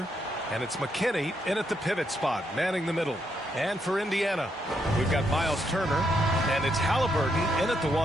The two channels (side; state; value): both; normal; correlation 0.78